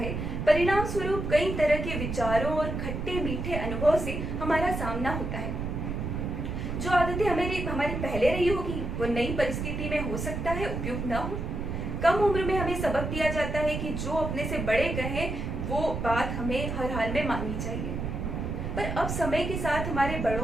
परिणाम स्वरूप कई तरह के विचारों और खट्टे मीठे अनुभव से हमारा सामना होता है। जो आदतें हमारी पहले रही होगी वो नई परिस्थिति में हो सकता है उपयुक्त न हो। कम उम्र में हमें सबक दिया जाता है कि जो अपने से बड़े कहें वो बात हमें हर हाल में माननी चाहिए। पर अब समय के साथ हमारे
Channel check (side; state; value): right; noise; rumble, 3 dB below the sound